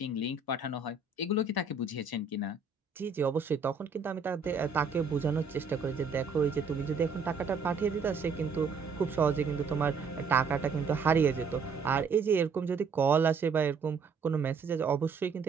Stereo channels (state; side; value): quieter; left; 4.9 dB